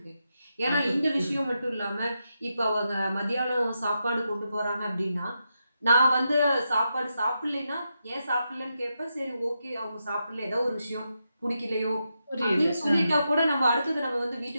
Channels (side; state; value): both; inverted; correlation -0.86